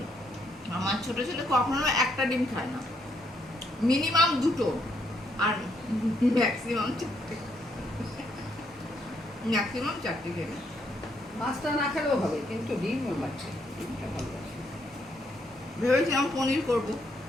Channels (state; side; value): normal; both; correlation 0.73